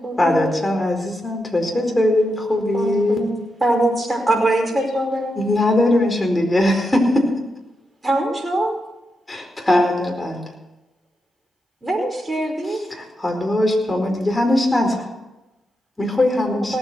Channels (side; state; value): both; normal; correlation 0.86